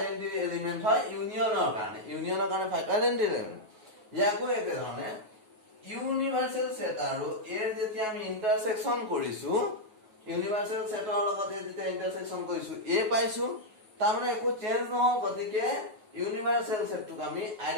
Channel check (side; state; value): left; late; 9.4 ms